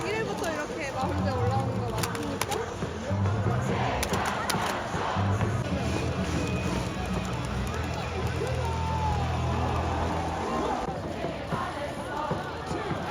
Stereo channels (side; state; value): both; identical; correlation 1.00